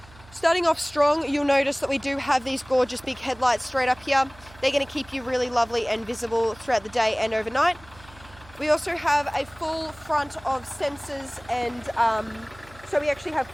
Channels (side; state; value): right; noise; hum, 23 dB below the sound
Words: Starting off strong, you'll notice that we do have these gorgeous big headlights straight up here. They're going to keep you really lovely and visible throughout the day and overnight. We also have a full front of sensors and so we actually have